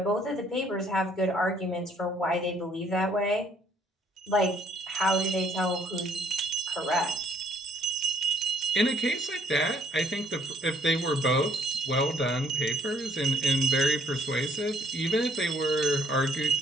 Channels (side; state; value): both; normal; correlation 0.64